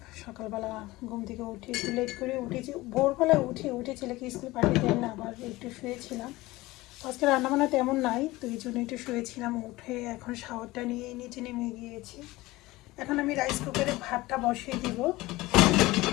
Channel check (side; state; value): right; quieter; 19.5 dB